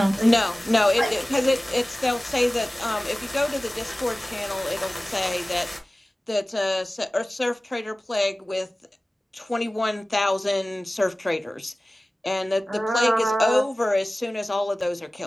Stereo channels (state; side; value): normal; both; correlation 0.97